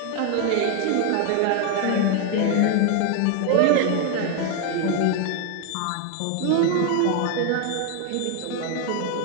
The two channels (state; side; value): different; both; correlation 0.01